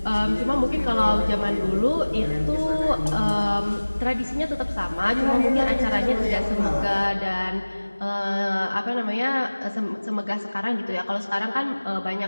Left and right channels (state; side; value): inverted; both; correlation -1.00